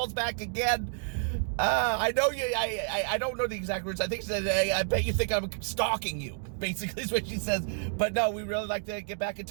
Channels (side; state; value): left; silent; digital silence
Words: back again. I know you. I don't know the exact words. I think she said, "Hey, I bet you think I'm stalking you." Basically, is what she says. But no, we really like to get back in